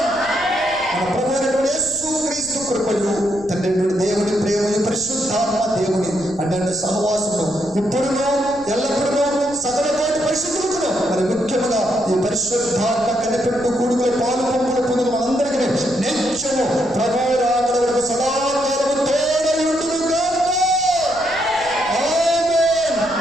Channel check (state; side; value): noise; left; rumble, 21 dB below the sound